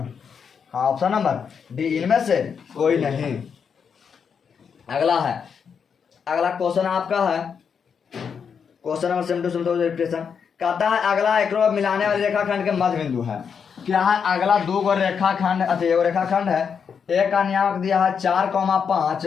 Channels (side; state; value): right; quieter; 6.7 dB